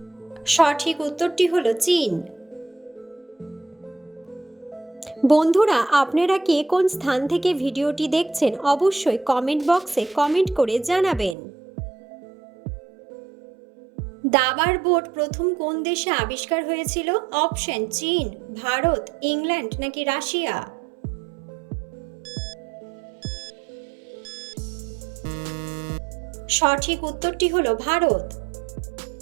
সঠিক উত্তরটি হলো চীন। বন্ধুরা, আপনারা কে কোন স্থান থেকে ভিডিওটি দেখছেন অবশ্যই কমেন্ট বক্সে কমেন্ট করে জানাবেন। দাবার বোর্ড প্রথম কোন দেশে আবিষ্কার হয়েছিল? অপশন চীন, ভারত, ইংল্যান্ড নাকি রাশিয়া। সঠিক উত্তরটি হলো ভারত।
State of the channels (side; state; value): left; drops out; at 11.4 s